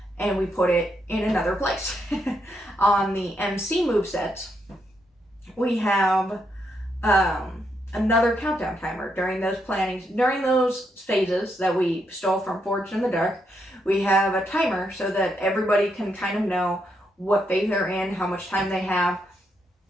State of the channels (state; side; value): normal; both; correlation 0.79